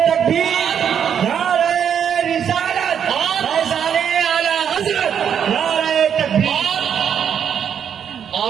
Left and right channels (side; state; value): left; quieter; 8.2 dB